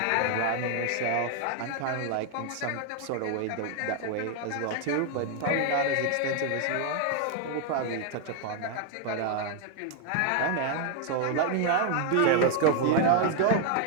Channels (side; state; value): both; different; correlation 0.00